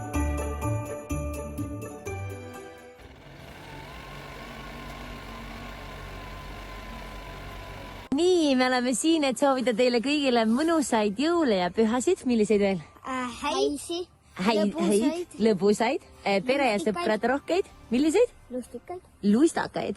me oleme siin, et soovida teile kõigile mõnusaid jõule ja pühasid. Milliseid veel? Häisi, lõbusaid, pere ja sõprad rohkeid. Milliseid? lustikaid,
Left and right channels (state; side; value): identical; both; correlation 1.00